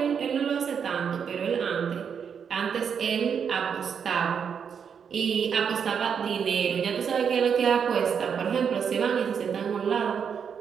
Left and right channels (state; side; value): quieter; left; 7.1 dB